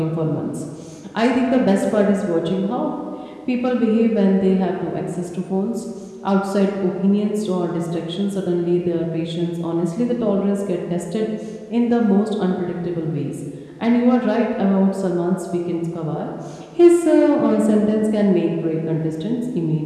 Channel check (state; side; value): identical; both; correlation 1.00